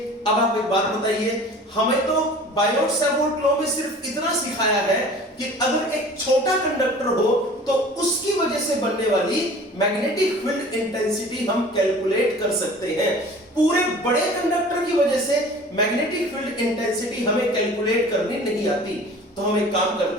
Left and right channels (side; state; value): both; normal; correlation 0.44